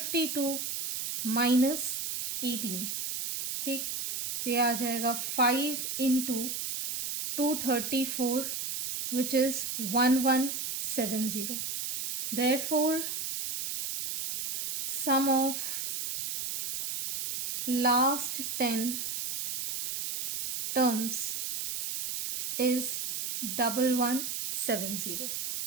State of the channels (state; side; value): noise; right; hiss, 3 dB below the sound